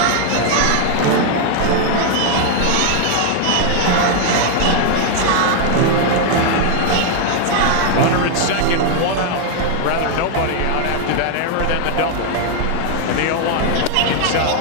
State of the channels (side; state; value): both; different; correlation 0.00